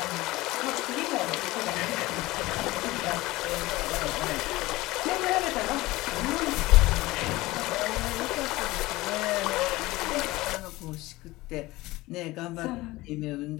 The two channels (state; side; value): quieter; right; 19.4 dB